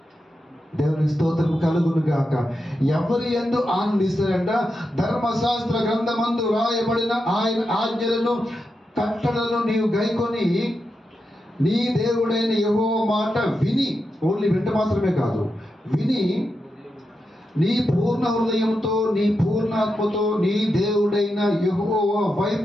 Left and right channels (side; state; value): both; normal; correlation 0.87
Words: దేవుని స్తోత్రం కలుగును గాక. ఎవరి యందు ఆనందిస్తారంట? ధర్మశాస్త్ర గ్రంథమందు రాయబడిన ఆయన ఆజ్ఞలను కట్టడలను నీవు గైకొని నీ దేవుడైన యెహోవా మాట విని, ఓన్లీ వింట మాత్రమే కాదు, విని నీ పూర్ణ హృదయంతో నీ పూర్ణాత్మతో నీ దేవుడైన యెహోవా